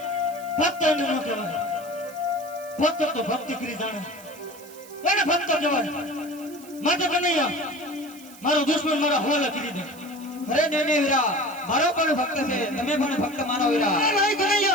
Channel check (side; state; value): right; noise; hiss, 20 dB below the sound